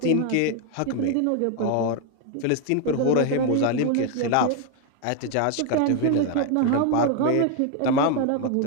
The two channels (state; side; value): different; both; correlation 0.01